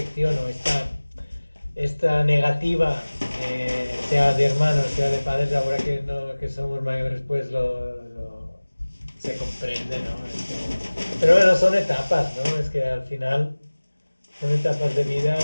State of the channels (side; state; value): both; inverted; correlation -1.00